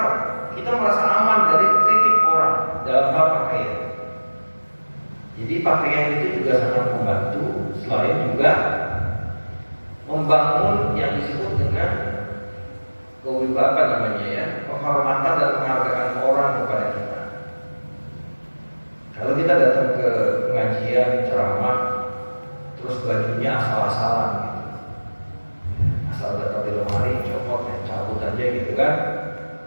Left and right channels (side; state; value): both; inverted; correlation -1.00